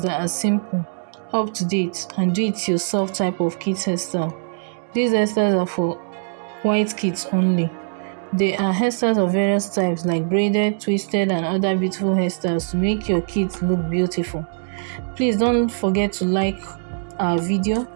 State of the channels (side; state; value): left; silent; digital silence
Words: that are simple, up to date and do it yourself type of kids hairstyle. These hairstyles are for white kids only. There are hairstyles of various types like braided, twisted and other beautiful hairstyles to make your kids look beautiful. Please don't forget to like our video,